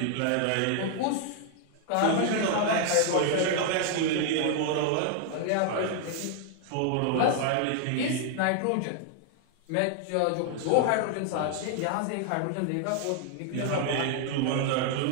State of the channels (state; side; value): different; both; correlation 0.00